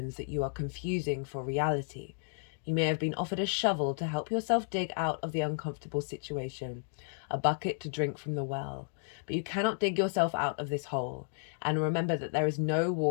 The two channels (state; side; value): silent; right; digital silence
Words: that you are confusing for reality. You may have been offered a shovel to help yourself dig out of the uncomfortable situation, a bucket to drink from the well, but you cannot dig yourself out of this hole, and remember that there is no